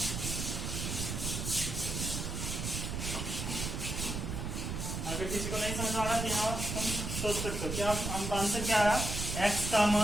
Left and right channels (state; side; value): noise; right; rumble, 3 dB below the sound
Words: अगर किसी को नहीं समझ आ रहा तो यहाँ तुम सोच सकते हो क्या हमका आंसर क्या है? एक्स का